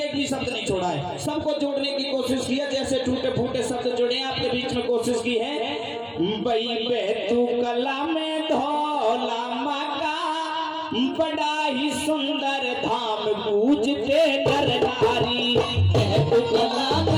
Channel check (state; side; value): identical; both; correlation 1.00